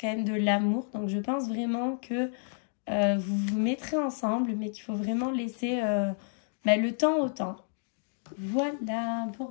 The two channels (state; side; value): silent; right; digital silence